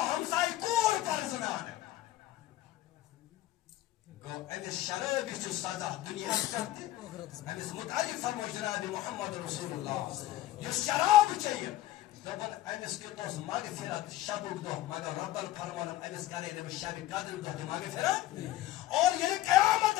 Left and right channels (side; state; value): right; quieter; 15.0 dB